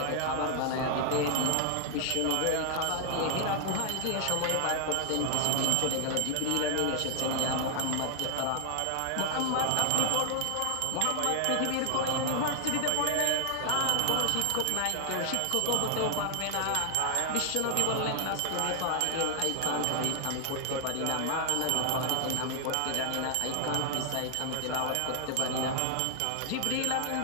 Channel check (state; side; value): different; both; correlation 0.00